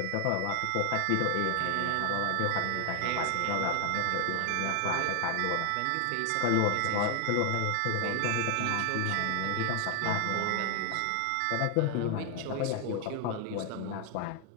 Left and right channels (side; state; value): both; different; correlation 0.00